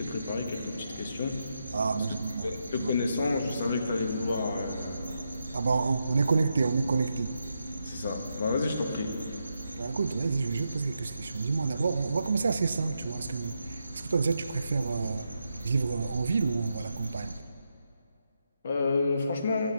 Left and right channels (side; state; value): both; inverted; correlation -0.84